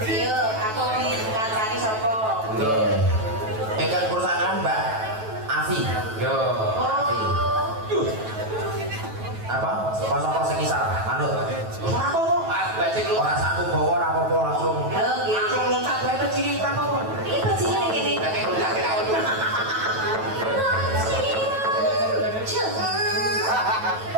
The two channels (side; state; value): left; late; 9.2 ms